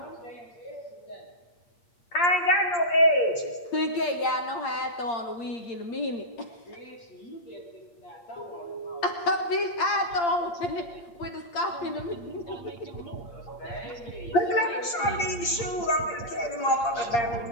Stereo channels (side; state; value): right; late; 8.6 ms